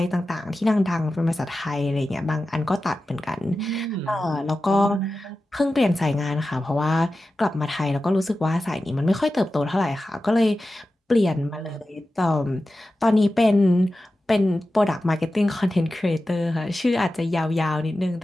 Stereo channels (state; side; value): normal; both; correlation 0.93